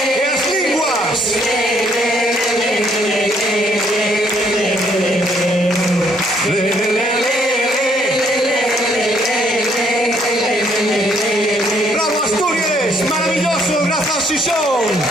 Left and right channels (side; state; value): both; normal; correlation 0.67